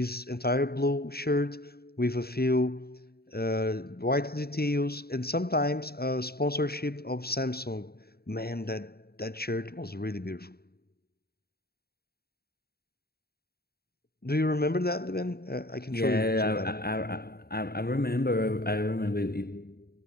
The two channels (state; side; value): late; right; 0.45 ms